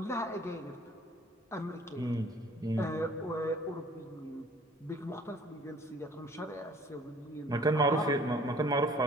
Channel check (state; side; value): normal; both; correlation 0.54